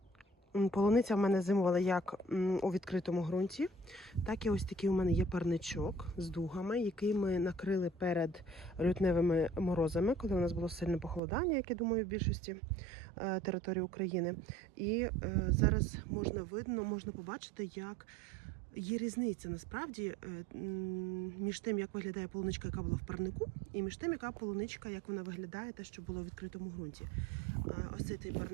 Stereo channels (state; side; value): drops out; left; at 11.2 s